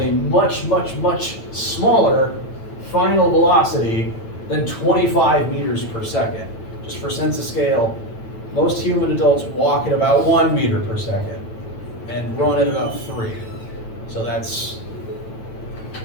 a much, much, much smaller final velocity than 25 meters per second. Just for sense of scale, most human adults walk at about 1 meter per second and run at about 3. So that's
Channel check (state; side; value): late; right; 9.0 ms